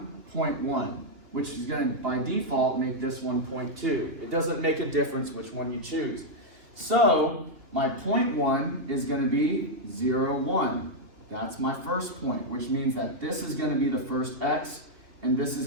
point 1? Which is going to, by default, make this one 0.2. It doesn't make a difference which one you choose. So, my point 1 is going to be 0, 1. That's my first point, which means that this is going to be the first x, and this is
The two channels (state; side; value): late; left; 3.1 ms